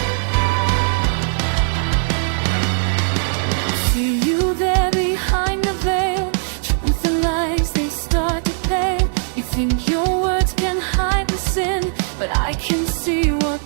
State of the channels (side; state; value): left; silent; 66 dB below the other